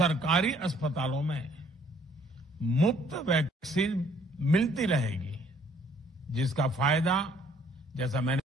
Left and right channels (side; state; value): both; normal; correlation 0.61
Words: अस्पतालों में मुफ्त वैक्सीन मिलती रहेगी, जिसका फायदा, जैसा